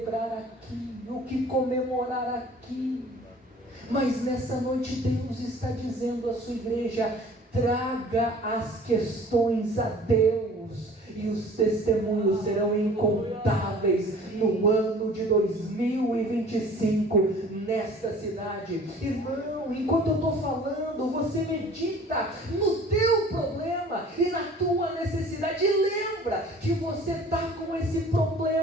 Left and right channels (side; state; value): both; normal; correlation 0.48